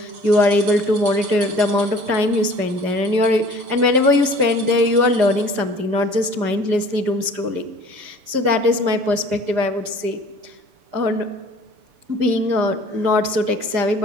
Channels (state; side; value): late; left; 6.8 ms